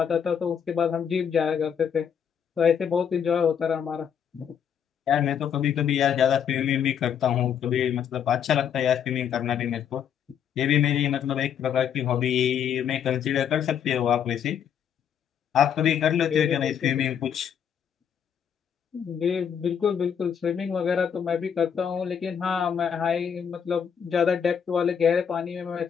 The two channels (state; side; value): quieter; right; 8.1 dB